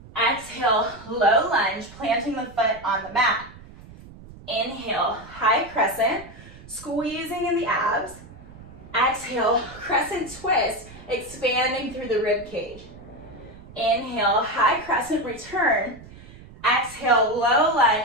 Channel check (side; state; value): right; noise; rumble, 19 dB below the sound